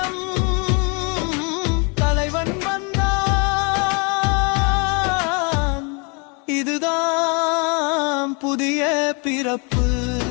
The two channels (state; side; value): quieter; right; 33.4 dB